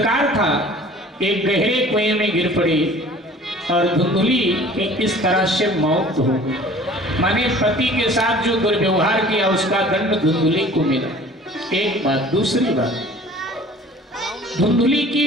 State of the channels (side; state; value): both; normal; correlation 0.47